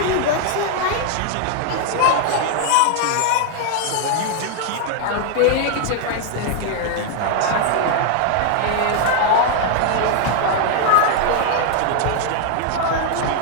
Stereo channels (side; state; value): both; different; correlation 0.00